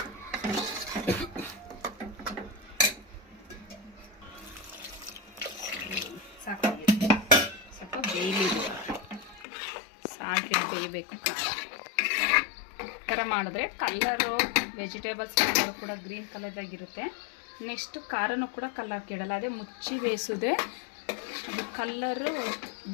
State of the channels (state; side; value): drops out; right; at 9.5 s